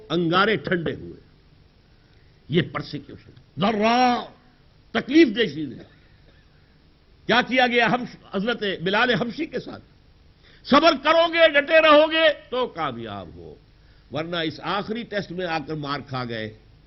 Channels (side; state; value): both; identical; correlation 1.00